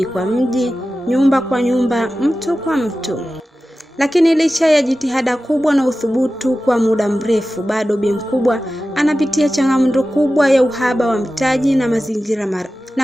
kwa mji, nyumba kwa nyumba, mtu kwa mtu. Lakini licha ya jitihada kubwa na uthubutu kwa muda mrefu, bado Bi Mkubwa anapitia changamoto kubwa ya uhaba wa mtaji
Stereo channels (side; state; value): both; normal; correlation 0.94